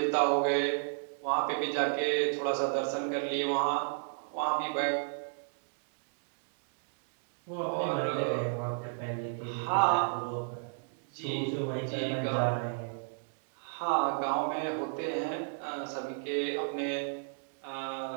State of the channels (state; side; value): silent; left; digital silence